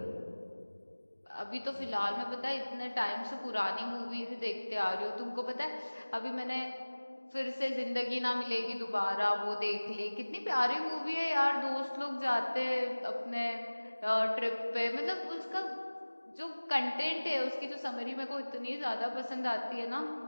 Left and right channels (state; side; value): inverted; both; correlation -1.00